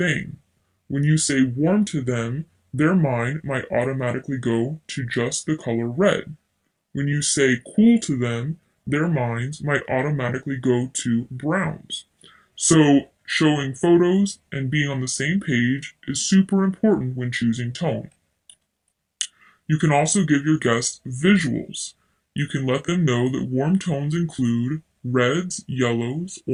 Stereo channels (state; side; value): identical; both; correlation 1.00